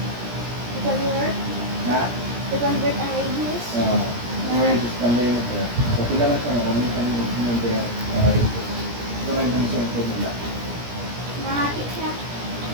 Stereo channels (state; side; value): late; left; 17 ms